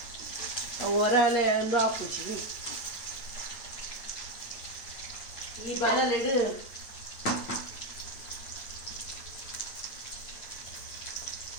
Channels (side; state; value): right; late; 8.9 ms